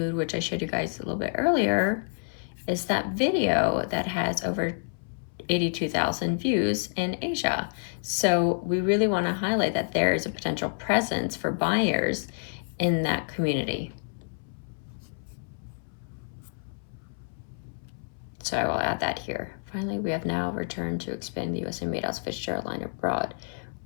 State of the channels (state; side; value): silent; right; 59 dB below the other